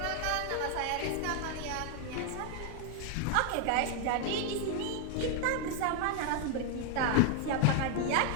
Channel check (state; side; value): different; both; correlation 0.00